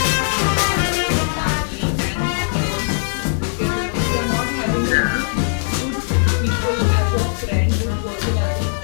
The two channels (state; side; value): silent; right; 59 dB below the other